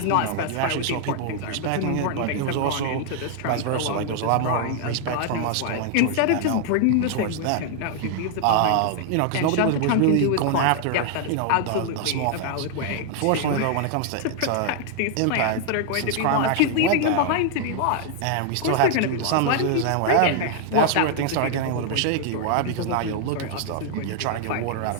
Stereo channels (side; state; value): both; different; correlation 0.00